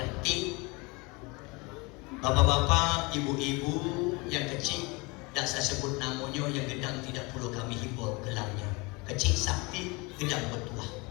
Bapak-bapak, ibu-ibu yang kecil, tidak saya sebut namanya, yang gedang tidak perlu kami himbau gelangnya. Kecil sakti, gedang bertuah.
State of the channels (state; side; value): quieter; right; 26.5 dB